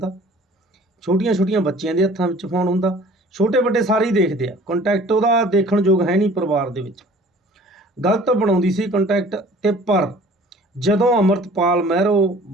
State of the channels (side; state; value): both; normal; correlation 0.50